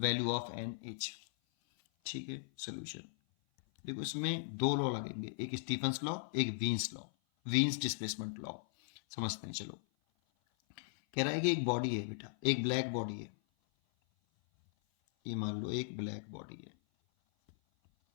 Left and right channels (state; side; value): silent; right; 53 dB below the other